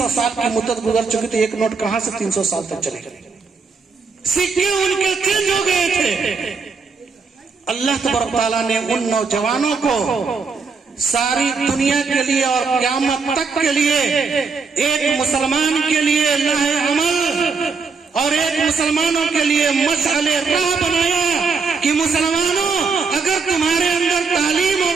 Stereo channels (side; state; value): left; quieter; 4.9 dB